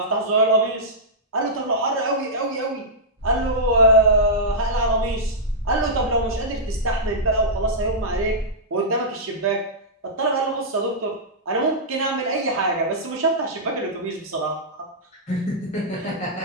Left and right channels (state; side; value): normal; both; correlation -0.12